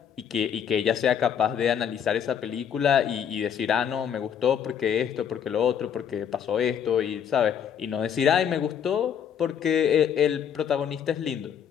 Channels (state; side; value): quieter; right; 8.4 dB